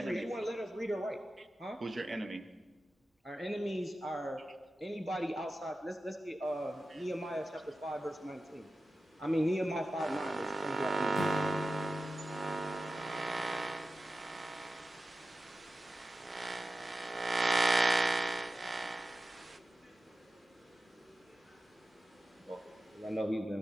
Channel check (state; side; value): normal; both; correlation 0.94